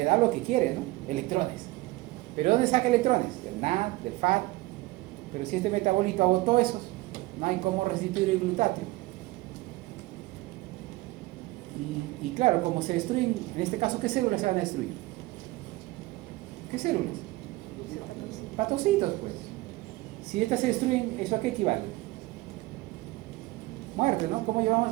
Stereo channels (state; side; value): quieter; left; 19.8 dB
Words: da lo que quiere, ¿no? Electrones. ¿Pero dónde saca electrones? Del NAD, del FAD. Pero si este metabolito agotó esos, no hay cómo restituir el glutatio. Y claro, como se destruyen, en este caso, ¿qué células se van a destruir? ¿Qué células? Patocitos, pues. Si estas se destruyen, ¿eso a qué equivale? Muerte, ¿no? ¿Cómo llevamos